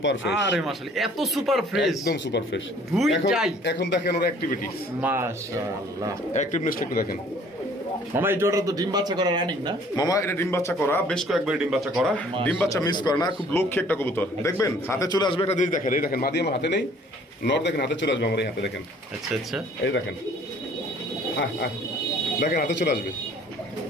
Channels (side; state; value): both; normal; correlation 0.55